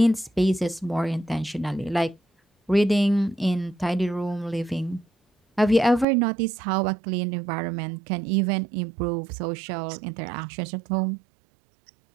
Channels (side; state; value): left; drops out; at 6.1 s